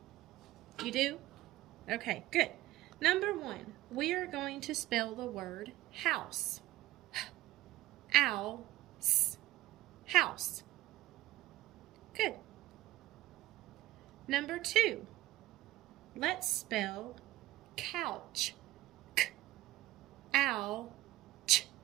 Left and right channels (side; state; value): left; quieter; 16.4 dB